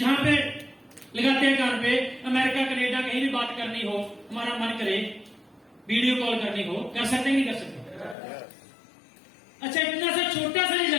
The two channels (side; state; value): right; drops out; at 8.2 s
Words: पे लगाते हैं कान पे, अमेरिका कनेडा कहीं भी बात करनी हो, हमारा मन करे वीडियो कॉल करनी हो, कर सकते हैं नहीं कर सकते? अच्छा, इतना सा छोटा सा ये